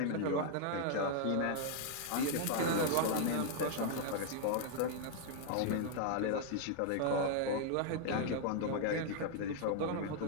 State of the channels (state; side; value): different; both; correlation 0.00